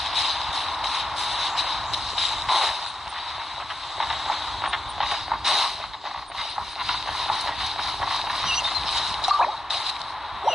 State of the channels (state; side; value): normal; both; correlation 0.88